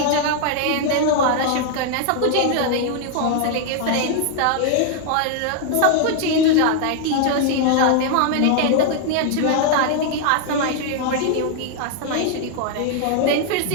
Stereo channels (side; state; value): both; different; correlation 0.00